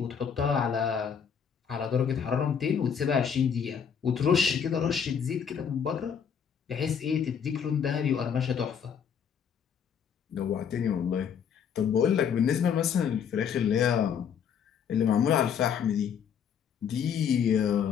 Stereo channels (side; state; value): right; quieter; 7.5 dB